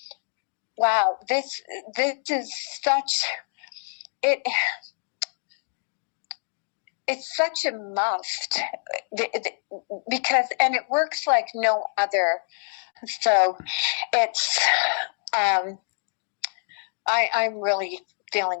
wow, this is such it. It's such a must because and it works like no other. So it's I'm really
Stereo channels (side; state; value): right; silent; digital silence